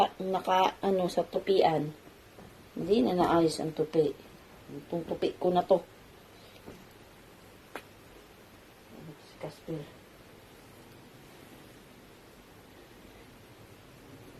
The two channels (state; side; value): identical; both; correlation 1.00